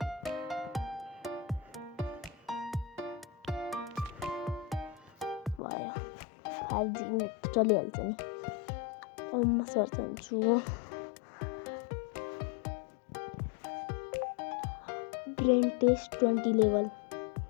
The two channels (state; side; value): drops out; right; at 5.6 s